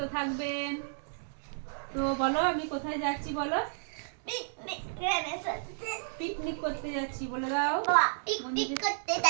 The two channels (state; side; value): silent; left; digital silence